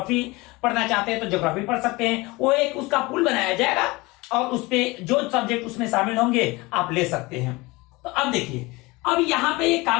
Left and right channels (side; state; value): right; quieter; 23.1 dB